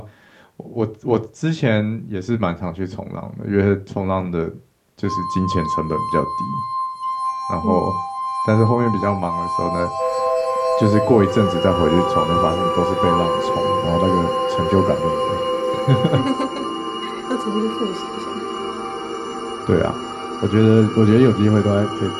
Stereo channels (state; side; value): identical; both; correlation 1.00